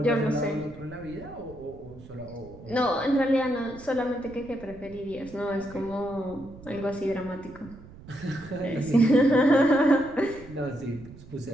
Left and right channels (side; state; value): right; noise; rumble, 19 dB below the sound